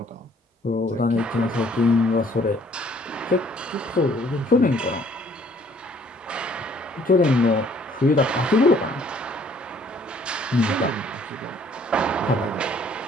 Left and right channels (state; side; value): normal; both; correlation 0.60